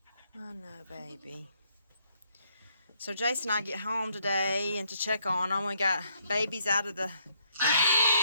I know, baby. So Jason and I get home today and to check on them. We got babies out of the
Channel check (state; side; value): inverted; both; correlation -0.71